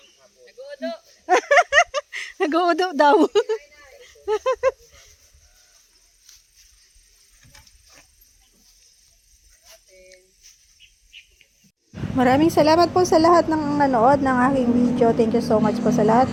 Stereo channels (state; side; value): identical; both; correlation 1.00